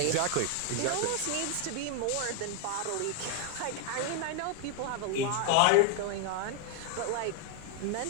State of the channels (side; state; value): both; different; correlation 0.00